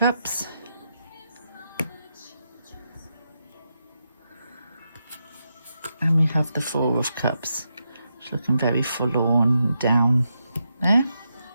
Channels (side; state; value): both; inverted; correlation -0.85